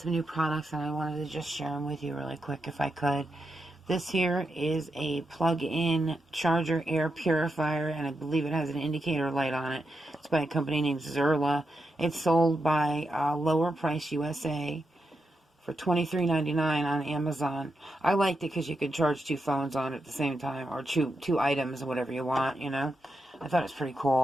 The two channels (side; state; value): both; normal; correlation 0.85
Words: new products and I wanted to just share them with you really quick if I could. This here is a plug-in charger air purifier, and I believe it has an indicator light on it. It's by a company named Zerla. It's sold by Lower Price USA for $23.99 on Amazon. I liked it because you could charge two phones on it at the same time, or two items, or whatever you want, you know. I thought it was pretty